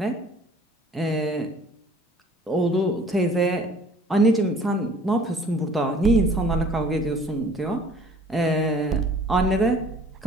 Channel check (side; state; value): both; normal; correlation 0.53